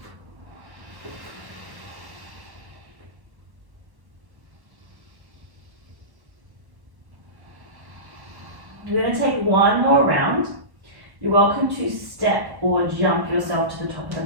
You're going to take one more round. You're welcome to step or jump yourself to the top of the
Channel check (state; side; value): late; left; 1.1 ms